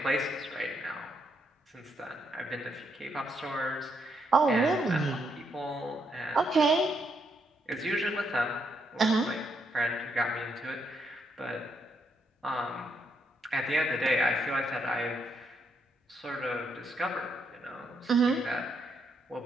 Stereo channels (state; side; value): normal; both; correlation 0.77